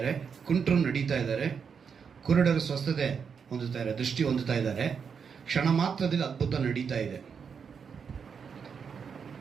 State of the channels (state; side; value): quieter; left; 6.4 dB